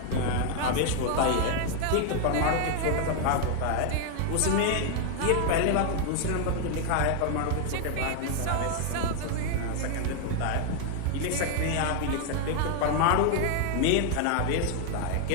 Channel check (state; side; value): different; both; correlation 0.00